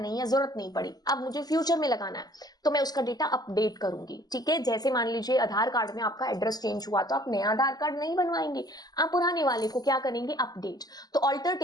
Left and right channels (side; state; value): right; late; 0.19 ms